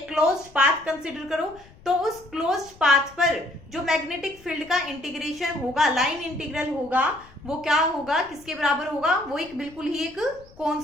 क्लोज्ड पाथ कंसिडर करो, तो उस क्लोज्ड पाथ पर जो मैग्नेटिक फील्ड का इंटीग्रेशन होगा, लाइन इंटीग्रल होगा, वो क्या होगा, किसके बराबर होगा, वो एक बिल्कुल ही एक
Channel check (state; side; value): noise; left; rumble, 24 dB below the sound